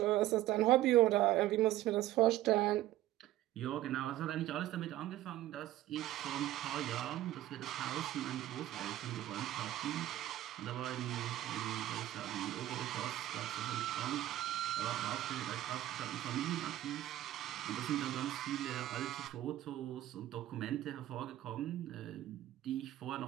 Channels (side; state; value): left; quieter; 14.3 dB